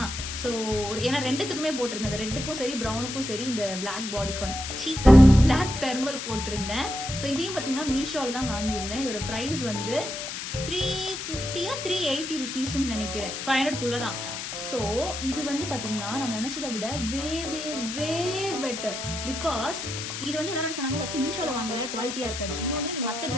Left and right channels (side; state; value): left; noise; hiss, 6 dB below the sound